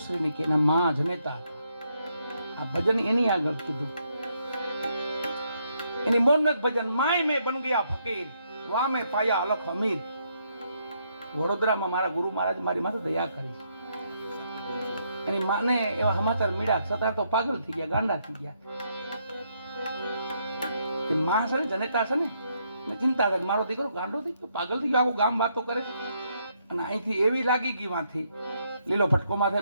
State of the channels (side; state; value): both; inverted; correlation -0.75